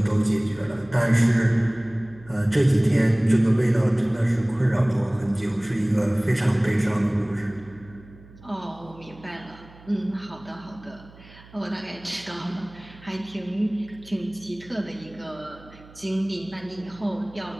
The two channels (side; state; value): right; noise; hum, 22 dB below the sound